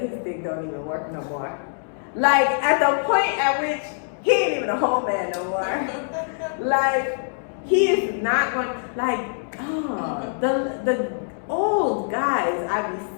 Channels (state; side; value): silent; right; digital silence